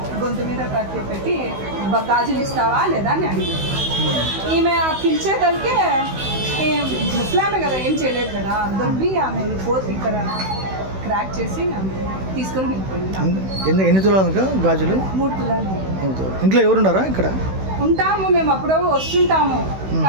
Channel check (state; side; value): late; left; 16 ms